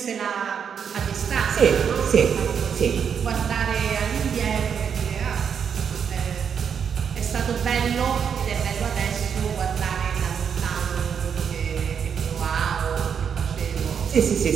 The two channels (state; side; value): quieter; left; 7.3 dB